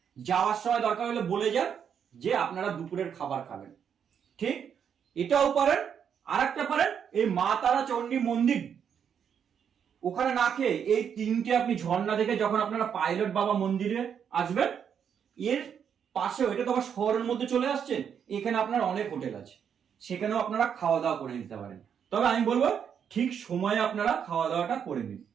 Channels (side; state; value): left; quieter; 7.9 dB